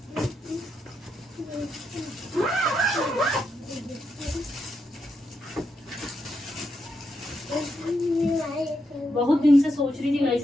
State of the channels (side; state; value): both; normal; correlation 0.82